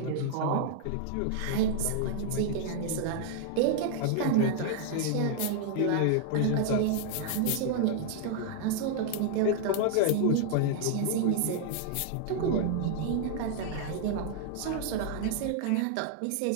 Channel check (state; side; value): different; both; correlation 0.00